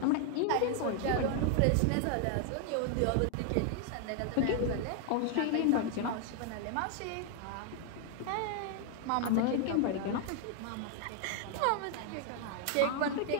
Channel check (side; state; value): both; different; correlation 0.00